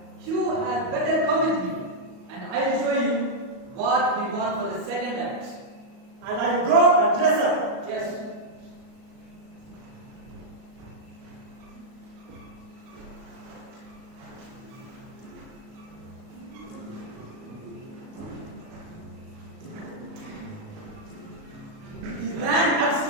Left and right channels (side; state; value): left; late; 37 ms